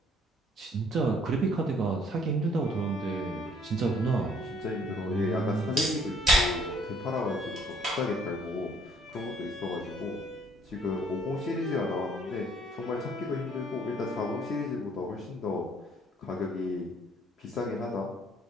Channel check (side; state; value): both; normal; correlation 0.61